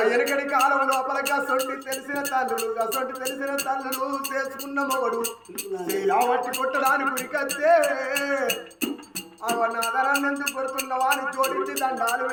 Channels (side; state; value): both; identical; correlation 1.00